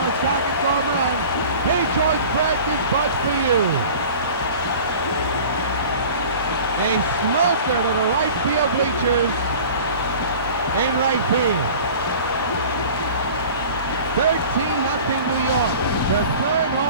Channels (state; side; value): inverted; both; correlation -0.42